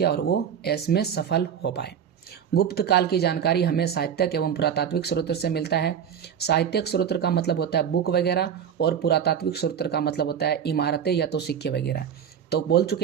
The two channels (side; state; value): left; quieter; 8.3 dB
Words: और वो इसमें सफल हो पाए। गुप्त काल की जानकारी हमें साहित्यक एवं पुरातात्विक स्रोत से मिलता है। साहित्यक स्रोत का मतलब होता है बुक वगैरह और पुरातात्विक स्रोत का मतलब होता है इमारतें या तो सिक्के वगैरह। तो बोल